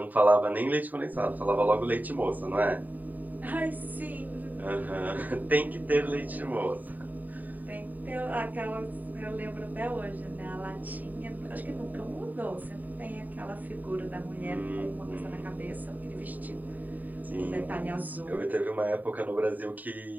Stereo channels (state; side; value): late; left; 0.084 ms